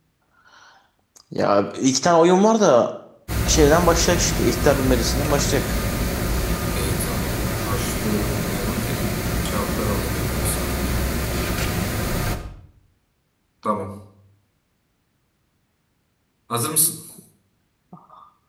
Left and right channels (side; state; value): both; identical; correlation 1.00